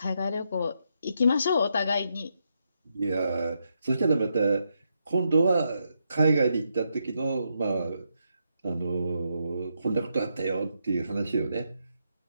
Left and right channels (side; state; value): both; inverted; correlation -0.81